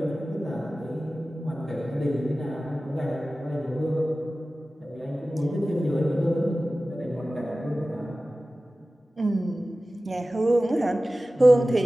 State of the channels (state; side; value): normal; both; correlation 0.96